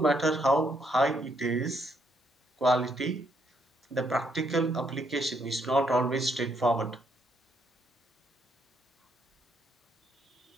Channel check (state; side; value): normal; both; correlation 0.73